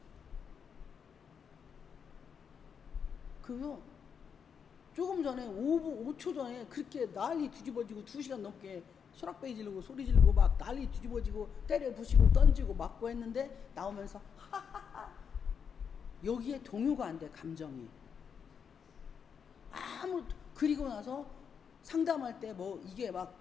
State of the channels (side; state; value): right; quieter; 6.9 dB